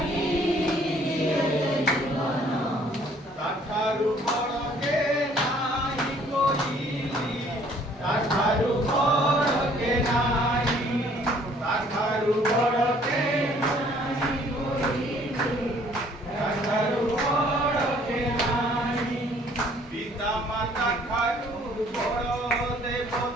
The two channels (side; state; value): both; normal; correlation 0.59